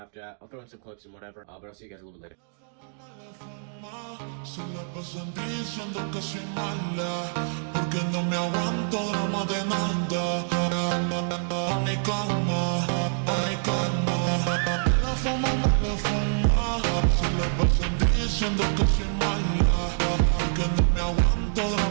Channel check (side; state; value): left; silent; digital silence